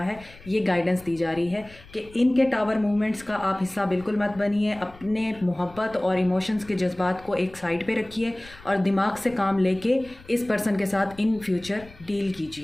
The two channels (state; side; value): noise; left; rumble, 22 dB below the sound